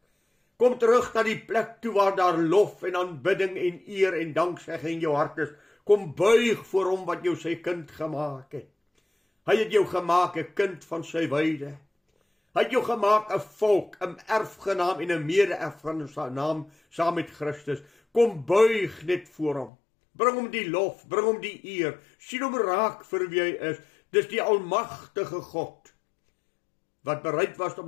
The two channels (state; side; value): drops out; right; at 19.7 s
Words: Kom terug na die plek toe waar daar lof en aanbidding en eer en danksegging in jou hart is. Kom buig voor hom wat jou sy kind gemaak het. Hy het jou gemaak 'n kind van sy weide. Hy het jou gemaak 'n volk, 'n erfgenaam en 'n mede-erfgenaam saam met Christus. Kom buig net voor hom. Bring hom die lof, bring hom die eer. Sien hom raak vir wie hy is. Dis die almagtige God wat bereid was om